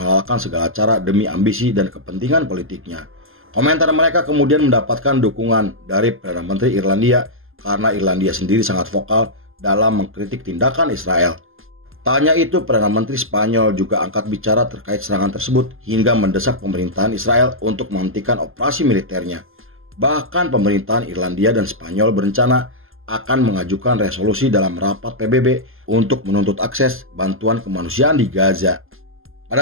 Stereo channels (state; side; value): late; left; 0.60 ms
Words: segala cara demi ambisi dan kepentingan politiknya. Komentar mereka kemudian mendapatkan dukungan dari Perdana Menteri Irlandia karena Irlandia sendiri sangat vokal dalam mengkritik tindakan Israel. Tanya itu, Perdana Menteri Spanyol juga angkat bicara terkait serangan tersebut hingga mendesak pemerintahan Israel untuk menghentikan operasi militernya. Bahkan pemerintahan Irlandia dan Spanyol berencana akan mengajukan resolusi dalam rapat PBB untuk menuntut akses bantuan kemanusiaan di Gaza.